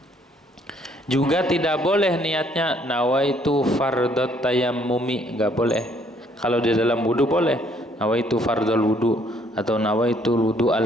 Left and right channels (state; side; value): normal; both; correlation 0.65